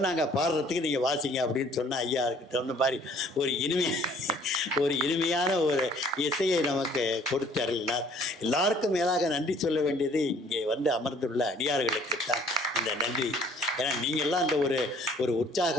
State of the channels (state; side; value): normal; both; correlation 0.57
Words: நாங்கள் பாடுறதுக்கு நீங்கள் வாசிங்க அப்படின்னு சொன்னால் ஐயா அதுக்கு தகுந்த மாதிரி ஒரு இனிமையான ஒரு இசையை நமக்கு கொடுத்து அருளினார். எல்லாருக்கும் மேலாக நன்றி சொல்ல வேண்டியது இங்கே அமர்ந்துள்ள அடியார்களுக்கு தான் இந்த நன்றி. ஏன்னா நீங்கள்லாம் அந்த ஒரு